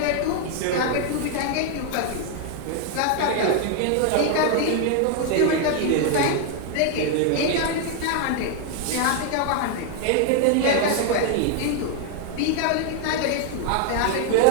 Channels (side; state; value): both; different; correlation 0.00